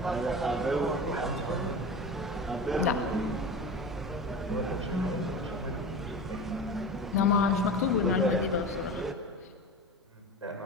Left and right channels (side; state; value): both; normal; correlation 0.30